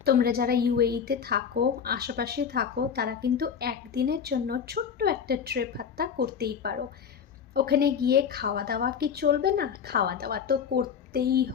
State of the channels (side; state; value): right; quieter; 7.4 dB